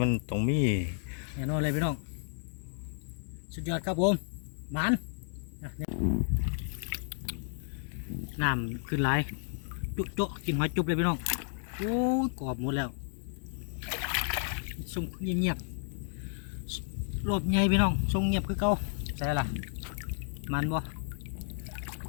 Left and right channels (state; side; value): silent; right; digital silence